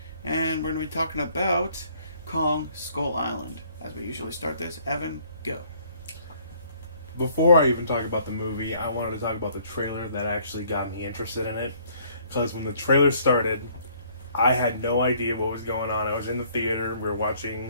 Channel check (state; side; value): inverted; both; correlation -0.61